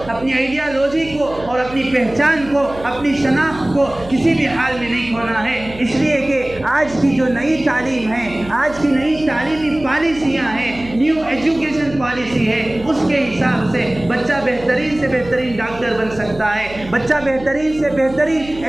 اپنی آئیڈیالوجی کو اور اپنی پہچان کو، اپنی شناخت کو کسی بھی حال میں نہیں کھونا ہے۔ اس لیے کہ آج کی جو نئی تعلیم ہے، آج کی نئی تعلیمی پالیسیاں ہیں، نیو ایجوکیشن پالیسی ہے، اس کے حساب سے بچہ بہترین سے بہترین ڈاکٹر بن سکتا ہے، بچہ بہترین سے بہترین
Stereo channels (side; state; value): right; noise; hum, 17 dB below the sound